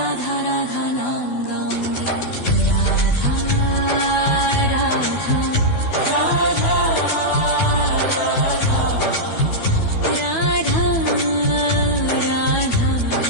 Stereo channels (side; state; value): right; late; 12 ms